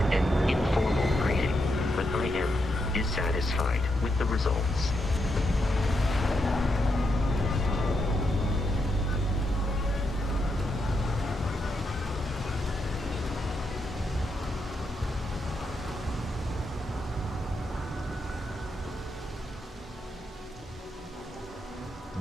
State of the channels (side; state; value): both; normal; correlation 0.82